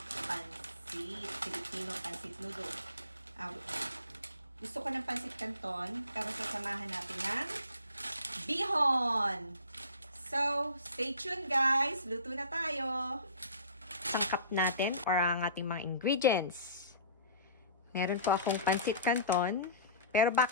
pansit. Filipino pansit noodle. Gusto ko ng pansit canton pero sasamahan natin ng bihon. So, stay tuned guys. Luto na tayo. Sangkap natin or ang ating mga ingredients. Meron po akong pansit canton, pero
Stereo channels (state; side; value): inverted; both; correlation -0.42